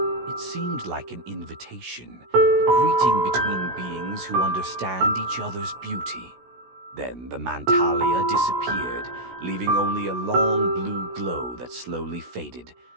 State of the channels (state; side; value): late; left; 16 ms